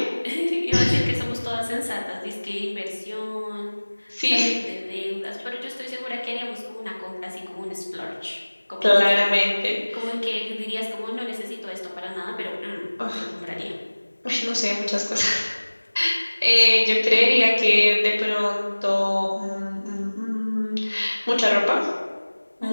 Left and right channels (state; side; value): inverted; both; correlation -1.00